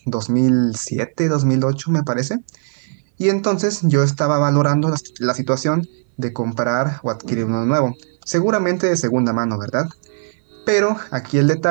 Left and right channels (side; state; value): left; silent; 64 dB below the other